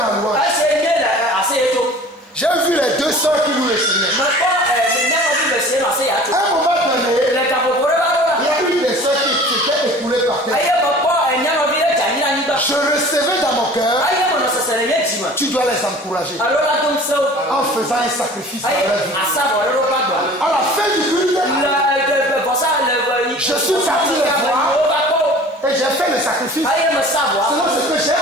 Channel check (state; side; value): normal; both; correlation 0.44